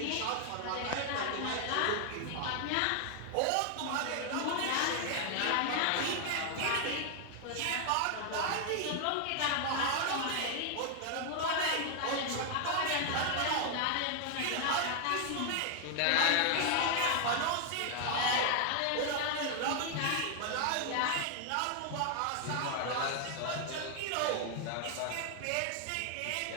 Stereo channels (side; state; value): both; different; correlation 0.00